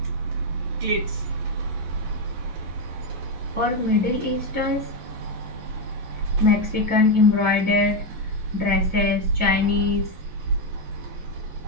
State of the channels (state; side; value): late; left; 11 ms